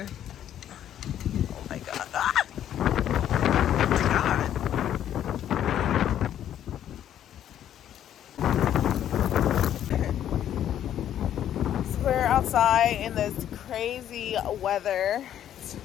Oh my god. Ah! So we're outside in this crazy weather. It's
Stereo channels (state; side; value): quieter; right; 10.7 dB